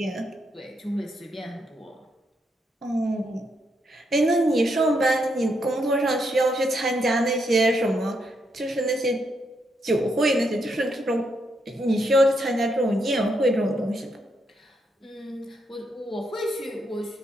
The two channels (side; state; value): both; normal; correlation 0.78